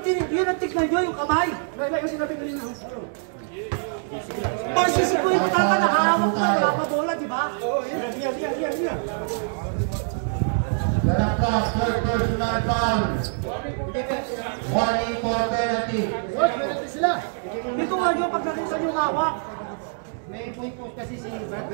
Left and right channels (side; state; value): left; silent; digital silence